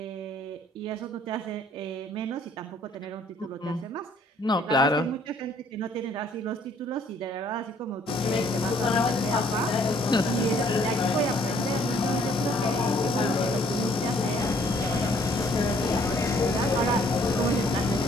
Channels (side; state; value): both; normal; correlation 0.62